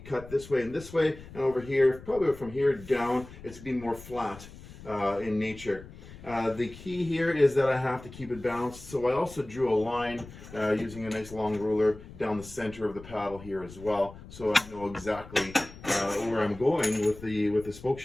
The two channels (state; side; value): noise; left; rumble, 17 dB below the sound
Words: this way, and over here, probably from here down, it's going to be more flat in nature. The key here is that I have to keep it balanced, so I also drew a line using a nice long ruler down the center of the paddle here as well, so I know exactly where I'm going with the spoke